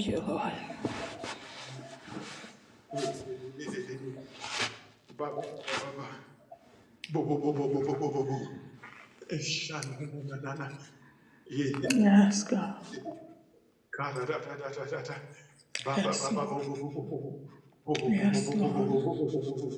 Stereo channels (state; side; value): identical; both; correlation 1.00